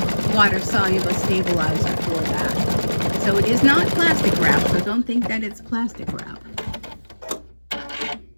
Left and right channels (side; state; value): both; inverted; correlation -1.00